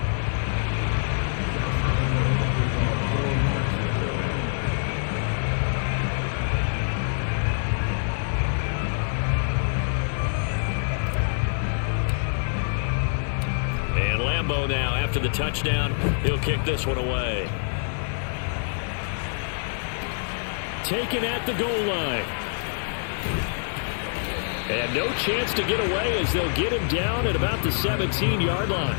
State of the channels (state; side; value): silent; right; digital silence